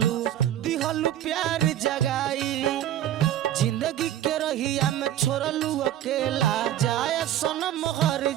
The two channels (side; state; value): left; quieter; 11.9 dB